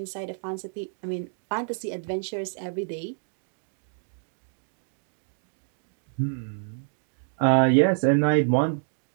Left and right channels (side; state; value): left; silent; digital silence